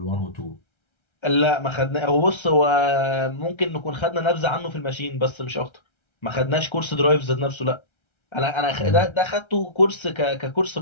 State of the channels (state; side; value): late; right; 1.3 ms